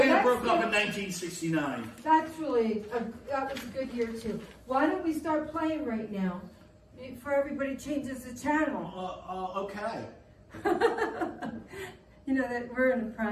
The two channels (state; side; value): identical; both; correlation 1.00